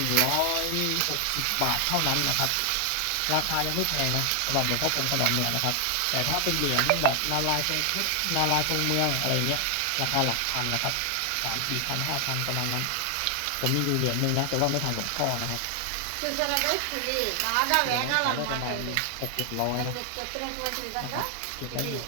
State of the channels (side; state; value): both; different; correlation 0.00